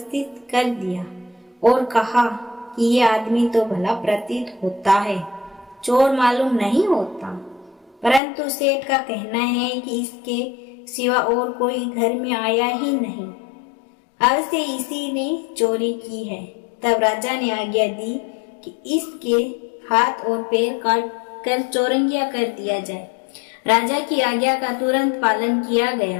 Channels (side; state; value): right; drops out; at 8.2 s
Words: कर दिया और कहा कि ये आदमी तो भला प्रतीत होता है, चोर मालूम नहीं होता, परंतु सेठ का कहना है कि इसके सिवा और कोई घर में आया ही नहीं, अवश्य इसी ने चोरी की है। तब राजा ने आज्ञा दी कि इसके हाथ और पैर काट कर चौरंगिया कर दिया जाए। राजा की आज्ञा का तुरंत पालन किया